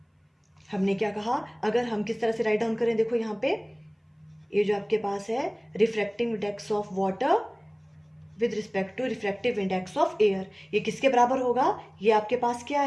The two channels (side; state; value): both; identical; correlation 1.00